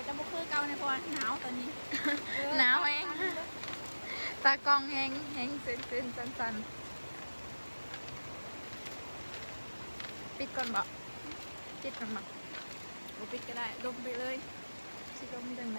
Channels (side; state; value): both; inverted; correlation -1.00